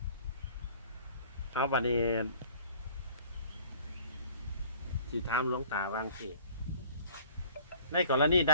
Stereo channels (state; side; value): inverted; both; correlation -0.51